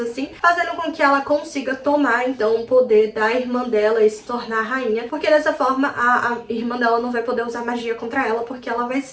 fazendo com que ela consiga tomar então o poder da irmã dela e se tornar rainha, porque dessa forma a irmã dela não vai poder usar magia contra ela, porque ela vai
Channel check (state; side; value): identical; both; correlation 1.00